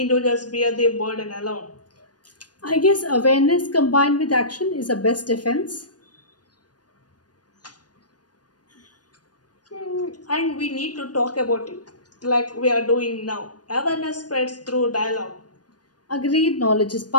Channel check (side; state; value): right; late; 0.69 ms